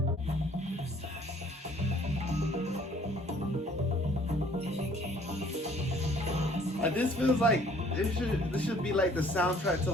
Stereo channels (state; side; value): normal; both; correlation 0.58